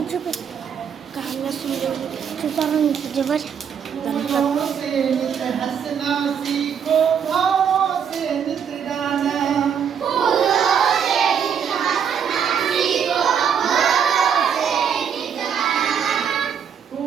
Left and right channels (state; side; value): quieter; left; 7.7 dB